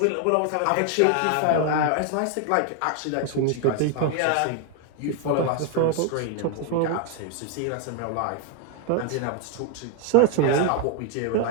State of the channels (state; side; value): different; both; correlation 0.01